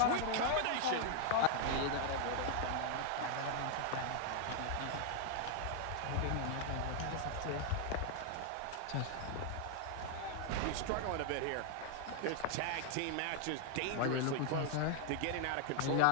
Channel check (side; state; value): both; different; correlation 0.00